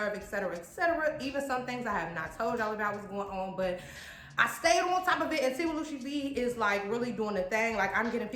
etc., etc. Even some things I have not told y'all about what's going on, but I stayed on top of it, and Tea with Lucci V is like really doing the thing. Like, I'm getting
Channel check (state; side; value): identical; both; correlation 1.00